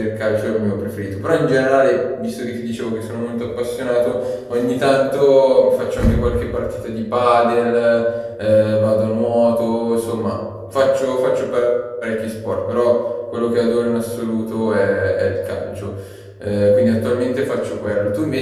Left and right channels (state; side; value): identical; both; correlation 1.00